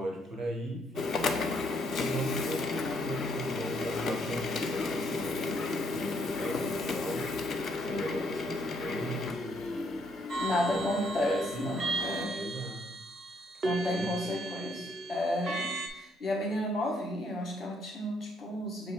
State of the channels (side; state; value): both; normal; correlation 0.71